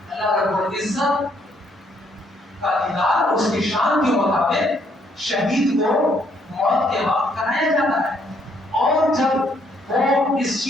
اللہ رب العزت کا دیدار اس کی شان کے مطابق شہید کو موت کے وقت کرایا جاتا ہے. اور جب وہ اس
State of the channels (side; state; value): both; normal; correlation 0.69